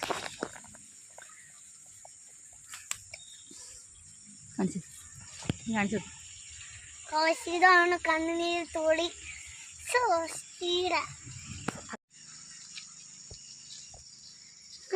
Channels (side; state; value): both; identical; correlation 1.00